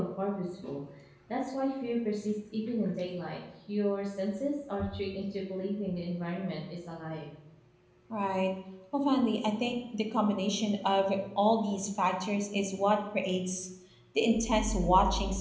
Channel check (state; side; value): identical; both; correlation 1.00